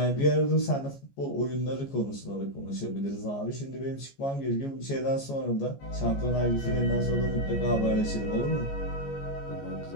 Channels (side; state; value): right; late; 14 ms